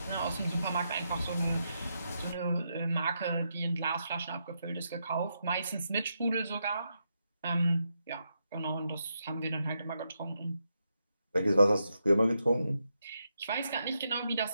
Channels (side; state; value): both; inverted; correlation -0.83